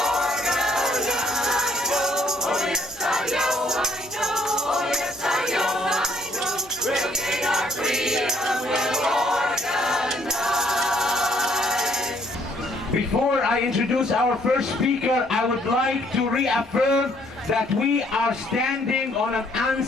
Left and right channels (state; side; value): normal; both; correlation 0.65